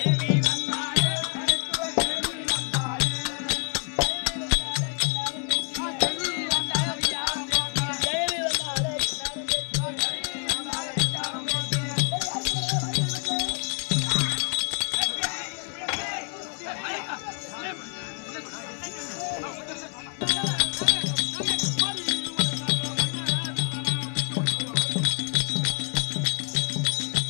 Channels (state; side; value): quieter; right; 39.7 dB